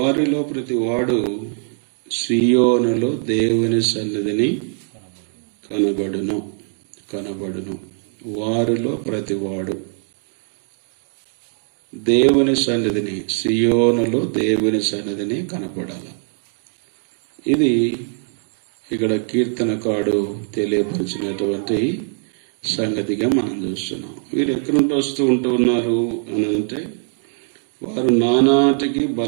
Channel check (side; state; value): left; silent; 59 dB below the other